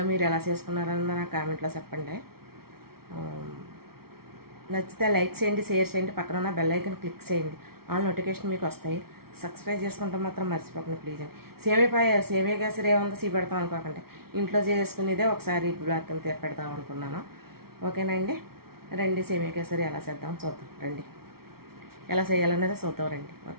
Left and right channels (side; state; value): left; late; 0.94 ms